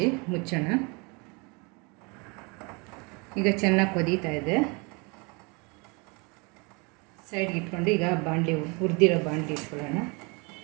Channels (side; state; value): left; quieter; 30.0 dB